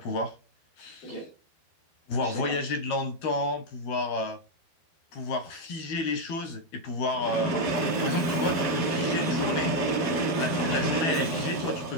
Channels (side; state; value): right; late; 12 ms